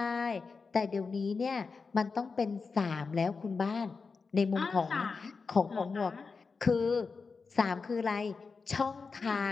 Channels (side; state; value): right; quieter; 4.7 dB